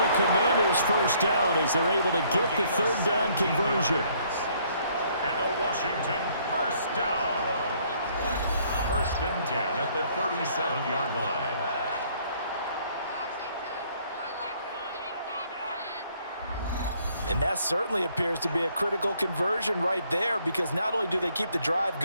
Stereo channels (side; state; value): both; inverted; correlation -0.65